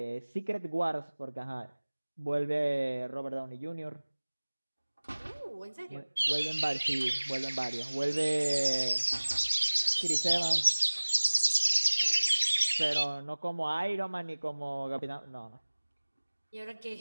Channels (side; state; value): both; inverted; correlation -1.00